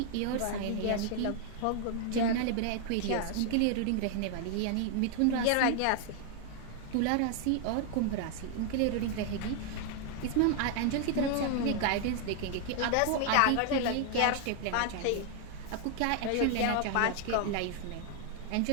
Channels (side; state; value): both; different; correlation 0.00